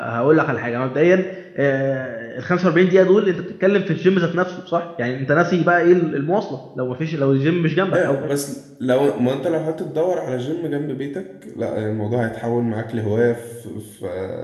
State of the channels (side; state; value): both; identical; correlation 1.00